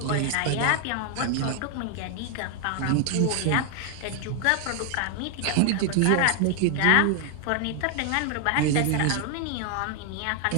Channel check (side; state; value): both; different; correlation 0.00